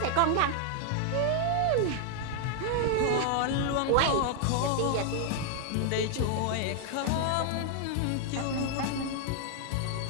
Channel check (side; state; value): both; different; correlation 0.00